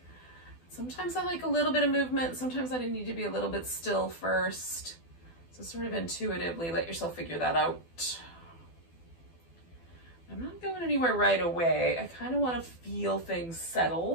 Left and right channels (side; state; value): right; late; 12 ms